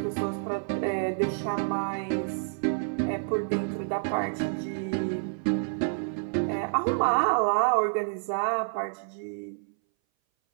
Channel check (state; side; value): silent; left; 59 dB below the other